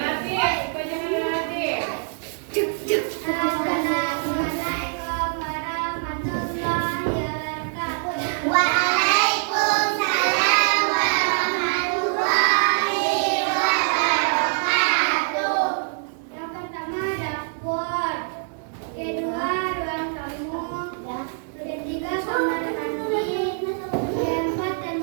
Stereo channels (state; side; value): silent; left; 63 dB below the other